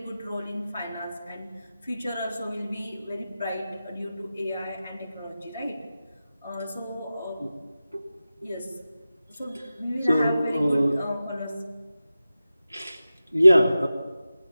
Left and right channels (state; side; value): inverted; both; correlation -0.94